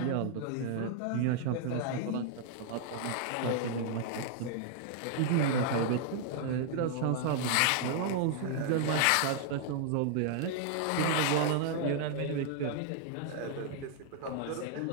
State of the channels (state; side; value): different; both; correlation -0.01